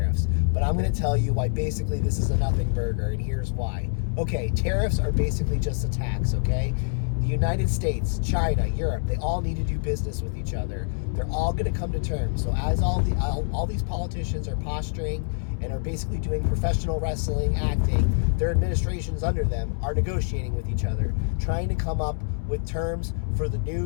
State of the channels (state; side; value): silent; right; 61 dB below the other